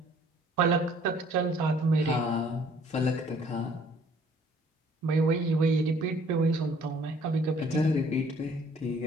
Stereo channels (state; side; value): normal; both; correlation 0.58